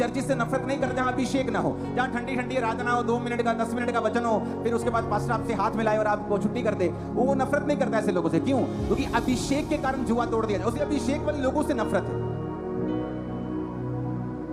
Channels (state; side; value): identical; both; correlation 1.00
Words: से नफरत नहीं करता जहां अभिषेक ना हो, जहां ठंडी ठंडी आराधना हो, 2 मिनट का 10 मिनट का वचन हो, फिर उसके बाद पास्टर आपसे हाथ मिलाए और आपको छुट्टी कर दे। वो नफरत नहीं करता ऐसे लोगों से। क्यों? क्योंकि अभिषेक के कारण जुआ तोड़ दिया जाए। उसे अभिषेक वाले लोगों से नफरत है।